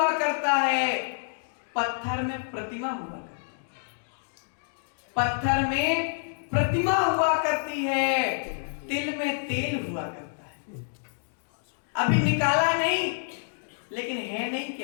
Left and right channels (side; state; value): right; silent; digital silence